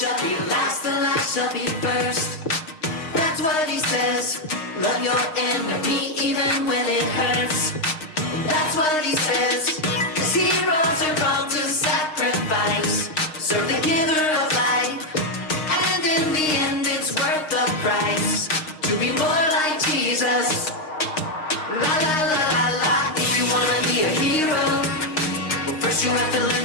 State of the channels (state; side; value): late; right; 6.5 ms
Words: be last, the last shall be first. That's what he says. Love your enemy even when it hurts. That's what he says. 'Cause heroes are called to sacrifice. Serve the giver of life. And in the end it's worth the price. To be more like Jesus. La la la la la. If you wanna be a hero, well, first you have to learn